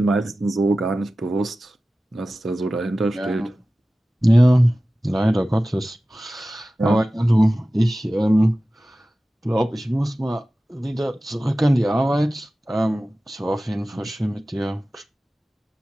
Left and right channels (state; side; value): normal; both; correlation 0.96